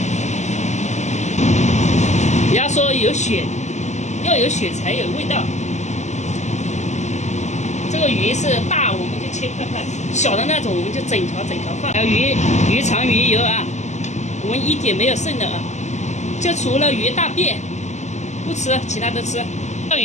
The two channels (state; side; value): late; right; 0.34 ms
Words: 人家说有血，要有血才有味道。这个个鱼是大，我们就切块块；小的那种，我们就整条放。还有鱼肠、鱼油啊，我们一点没有剩的啊，就除了鱼大便不吃，其他都吃。钓